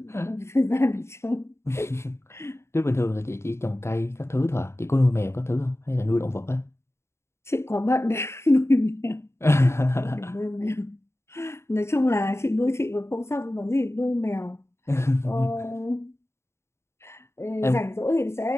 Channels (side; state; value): right; late; 0.13 ms